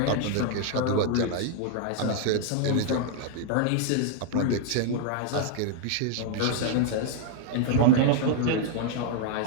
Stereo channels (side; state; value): both; different; correlation 0.00